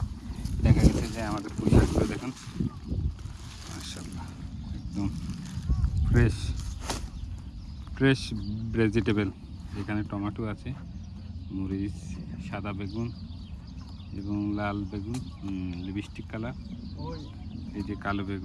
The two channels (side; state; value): both; identical; correlation 1.00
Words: দেখা গেছে যে আমাদের পুঁই শাকগুলো দেখুন মাশাআল্লাহ, একদম ফ্রেশ ফ্রেশ ভেজিটেবল। এখানে টমেটো আছে, মরিচ, সাদা বেগুন এবং লাল বেগুন, লিপস্টিক কালার, এই যে কালো